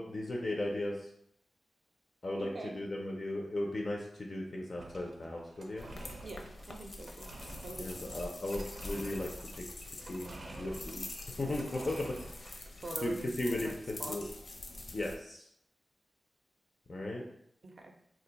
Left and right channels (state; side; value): normal; both; correlation 0.94